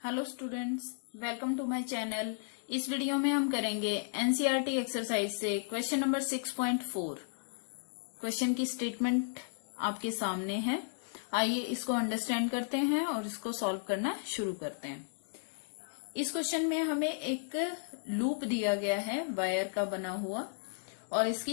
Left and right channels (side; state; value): right; silent; digital silence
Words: Hello students, welcome to my channel. इस video में हम करेंगे एनसीईआरटी एक्सरसाइज से क्वेश्चन नंबर 6.4। क्वेश्चन की स्टेटमेंट आपके सामने है। आइए इसको अंडरस्टैंड करते हैं और इसको सॉल्व करना शुरू करते हैं। इस क्वेश्चन में हमें एक लूप दिया गया है वायर का बना हुआ और